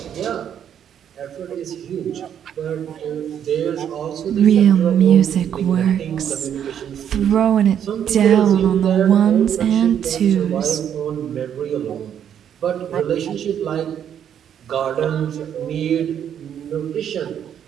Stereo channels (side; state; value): left; quieter; 9.2 dB